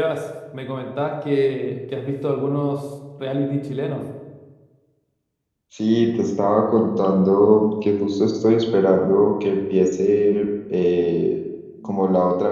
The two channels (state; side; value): identical; both; correlation 1.00